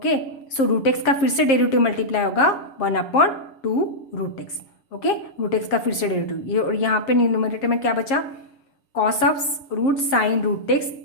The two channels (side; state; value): right; late; 7.4 ms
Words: सो रूट एक्स का फिर से डेरिवेटिव मल्टीप्लाई होगा 1 upon 2 root x, okay root x का फिर से डेरिवेटिव ये, और यहाँ पे न्यूमरेटर में क्या बचा cos of root sine root x